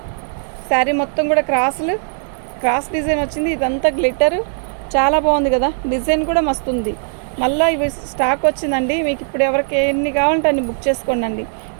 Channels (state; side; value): silent; left; 67 dB below the other